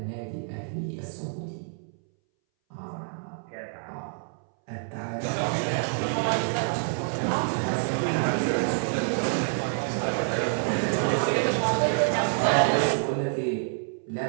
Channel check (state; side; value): silent; left; 60 dB below the other